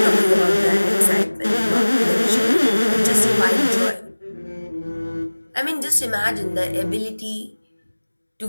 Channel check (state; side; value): inverted; both; correlation -1.00